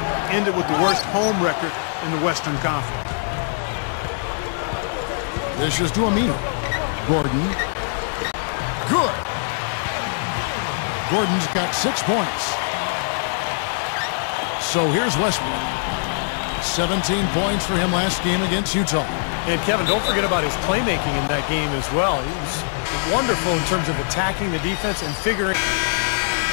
Ended with the worst home record in the Western Conference. This is to Aminu. Gordon. Good. Gordon's got 6 points. So here's Westbrook. 17 points for him last game against Utah. And Kevin, don't forget about his playmaking in that game as well. He was wonderful in terms of attacking the defense and figuring.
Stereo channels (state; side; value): silent; right; digital silence